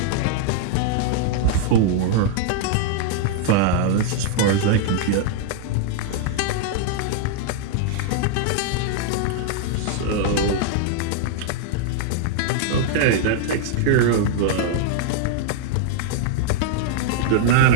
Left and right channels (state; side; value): different; both; correlation -0.01